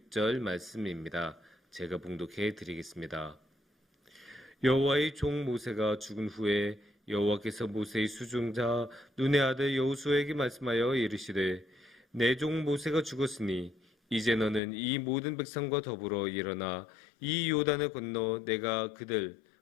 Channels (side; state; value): right; drops out; at 14.6 s